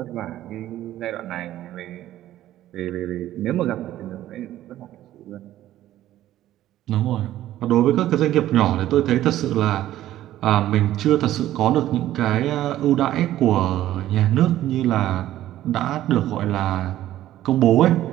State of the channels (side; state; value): left; quieter; 13.5 dB